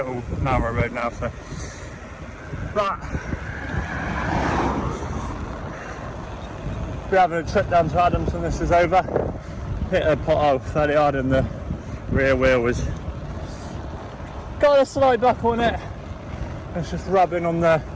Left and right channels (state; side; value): identical; both; correlation 1.00